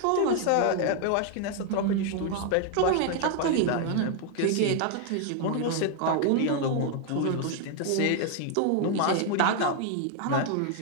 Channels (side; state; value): both; different; correlation 0.00